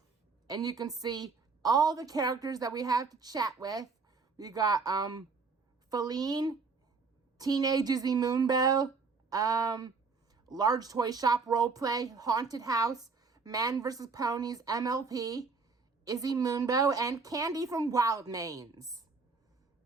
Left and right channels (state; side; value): quieter; left; 4.7 dB